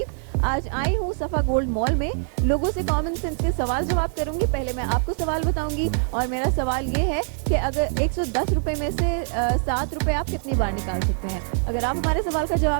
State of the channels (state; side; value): silent; left; 63 dB below the other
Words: आज आई हूँ सफ़ा गोल्ड मॉल में, लोगों से कॉमन सेंस के सवाल जवाब करूँगी। पहले मैं आपको सवाल बताऊँगी और मेरा सवाल ये है कि अगर 110 रुपये में से 7 रुपये आप कितनी बार निकाल सकते हैं। अगर आप हमारे सवाल का